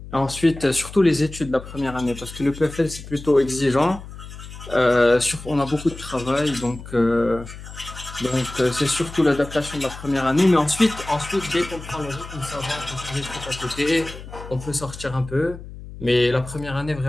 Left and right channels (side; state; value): left; noise; hum, 14 dB below the sound